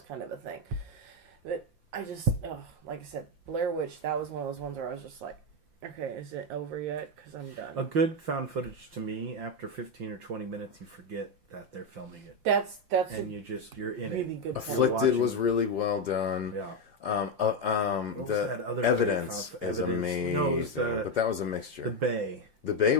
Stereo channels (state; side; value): late; left; 5.7 ms